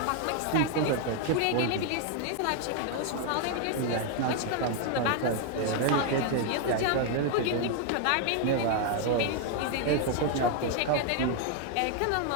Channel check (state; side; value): different; both; correlation 0.00